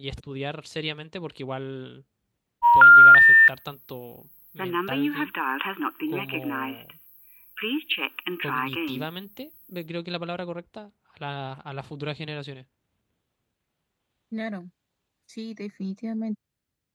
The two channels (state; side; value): identical; both; correlation 1.00